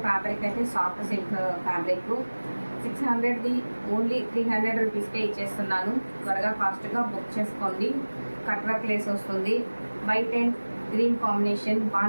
ఫ్యాబ్రిక్ అయితే సాఫ్ట్ సిల్క్ ఫ్యాబ్రిక్ 600ది ఓన్లీ 300 రూపీస్కే ఇచ్చేస్తున్నాను. త్వరగా ఫాస్ట్గా బుక్ చేసుకోండి. కట్ వర్క్ లేస్ వస్తుంది, white and green combination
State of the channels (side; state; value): both; inverted; correlation -1.00